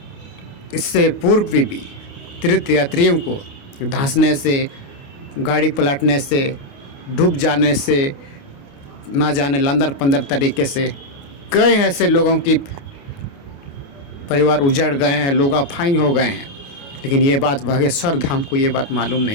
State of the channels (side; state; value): right; late; 29 ms